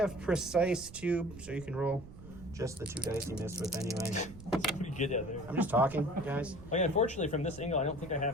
precise too, so you can roll just the 2 dice he missed with anyway. Pretty good out there. I'm just talking, guys. Oh yeah, unfortunately from this angle, I don't think I have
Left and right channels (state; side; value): noise; right; rumble, 16 dB below the sound